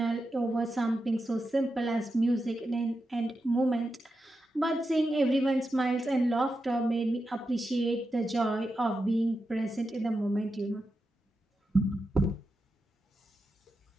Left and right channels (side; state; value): both; normal; correlation 0.88